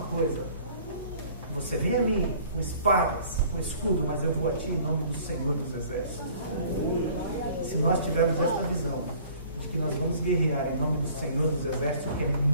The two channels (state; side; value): inverted; both; correlation -0.52